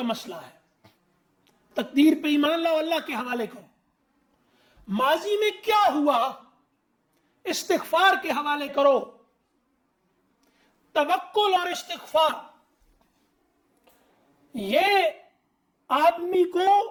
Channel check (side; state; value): both; identical; correlation 1.00